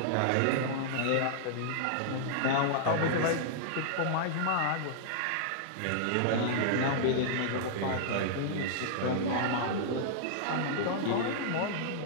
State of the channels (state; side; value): different; both; correlation -0.01